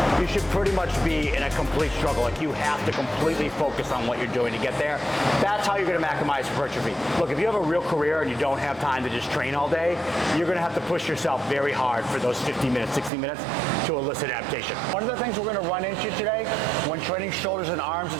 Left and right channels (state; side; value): drops out; left; at 13.1 s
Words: you should pretty much be in a complete struggle. Like you have to completely focus on what you're doing to get there. That's how you're going to maximize hypertrophy. Look, if you have a real career and you don't have time to just train all day, you're going to have to push yourself very hard for those 50 minutes, 60 minutes to elicit adaptation. One of the things we're going to run into today when training shoulders and arms at